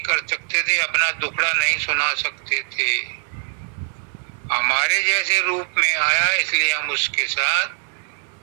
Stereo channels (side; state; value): left; silent; 64 dB below the other